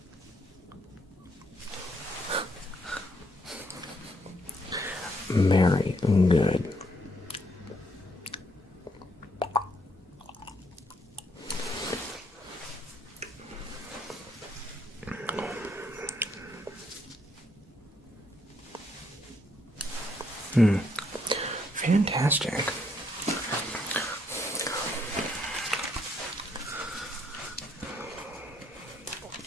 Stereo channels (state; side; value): normal; both; correlation 0.72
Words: very good. Fantastic.